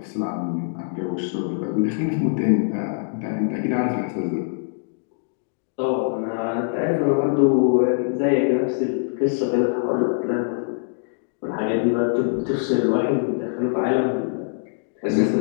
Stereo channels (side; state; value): right; silent; digital silence